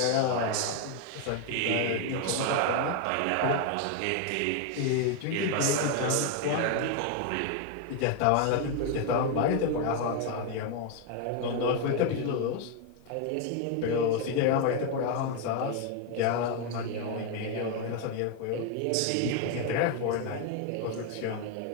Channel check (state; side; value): different; both; correlation 0.01